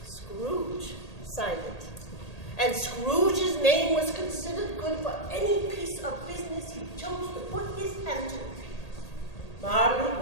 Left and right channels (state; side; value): late; right; 1.8 ms